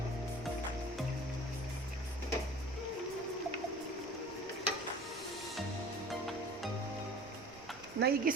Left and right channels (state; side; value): noise; right; rumble, 21 dB below the sound